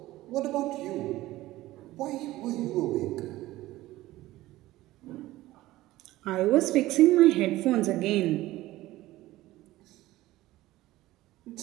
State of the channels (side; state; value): left; quieter; 16.9 dB